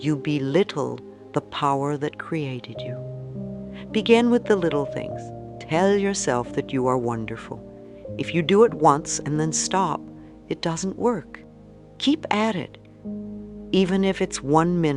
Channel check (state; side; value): identical; both; correlation 1.00